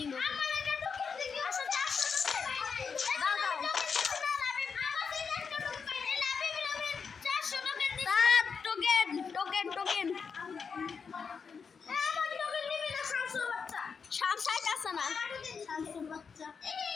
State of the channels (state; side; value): quieter; right; 5.8 dB